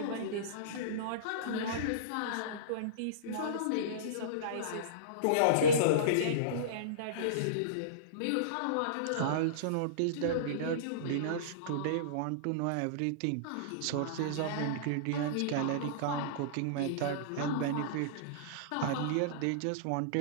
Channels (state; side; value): different; both; correlation -0.04